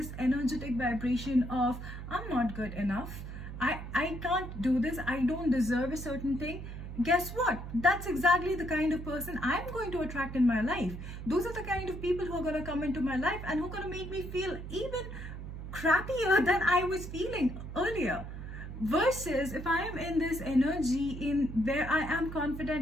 energetic vibration of I'm not good enough, I can't do this, I don't deserve a certain thing, guess what? That's exactly the kind of person I'm going to attract in my life. Those are the kind of people who are going to come into my life and who are going to make me feel even crappier than I was feeling earlier. Versus if I am in this energy in where I am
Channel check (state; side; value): noise; right; hum, 9 dB below the sound